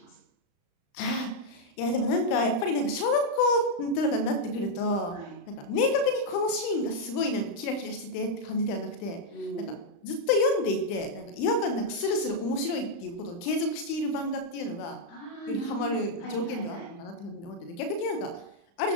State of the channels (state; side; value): late; right; 35 ms